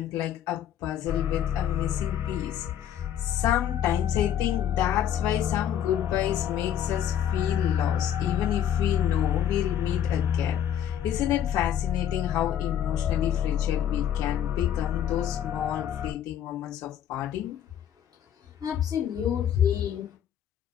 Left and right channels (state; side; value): quieter; right; 9.9 dB